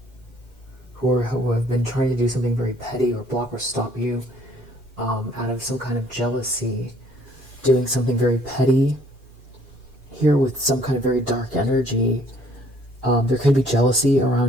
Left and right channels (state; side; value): normal; both; correlation 0.61